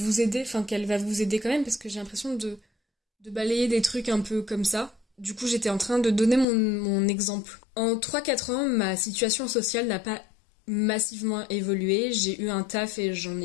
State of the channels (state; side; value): drops out; right; at 6.5 s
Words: aider, qu'elle va vous aider quand même, parce que j'ai l'impression de balayer des trucs un peu comme ça. Du coup, j'étais en train de donner mon exemple. En 3-4 ans, ma situation sociale n'a pas massivement évolué. J'ai eu un taf et j'en